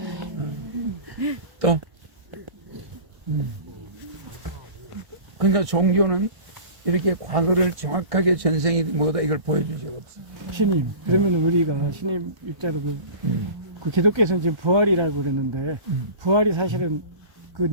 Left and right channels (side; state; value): left; late; 1.1 ms